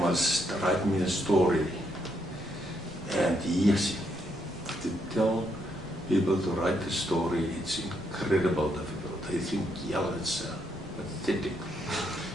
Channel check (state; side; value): normal; both; correlation 0.77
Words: write me a story. And yes, to tell people to write a story, it's incredible difficult. They think, yeah, it's pathetic